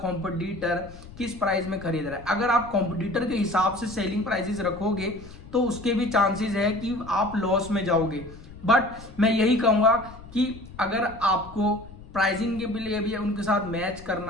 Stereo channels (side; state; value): left; noise; rumble, 17 dB below the sound